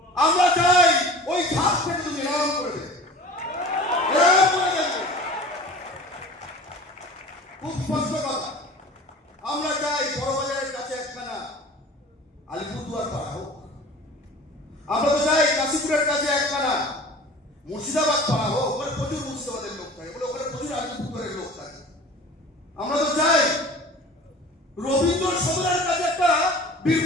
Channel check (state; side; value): normal; both; correlation 0.41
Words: আমরা চাই ওই ঘাট থেকে তুমি এরকম করে দেবে, এরকম করে দেখবে। খুব স্পষ্ট কথা, আমরা চাই বড়বাজারের কাছে একখানা আলিপুরদুয়ার পাড়া হোক, আমরা তো চাই কাশীপুরের কাছে একখানা মুর্শিদাবাদ পাড়া হোক। ওখানে প্রচুর মুর্শিদাবাদের লোক থাকে, বলে ওখানে প্রচুর আলিপুরদুয়ারের লোক থাকে। আমরা তো চাই রবীন্দ্র সদনের কাছে একটা